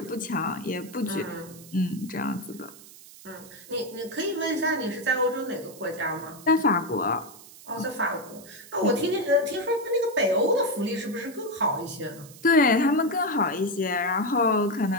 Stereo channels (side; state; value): right; noise; hiss, 19 dB below the sound